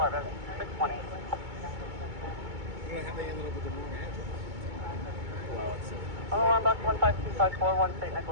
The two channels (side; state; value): left; late; 2.2 ms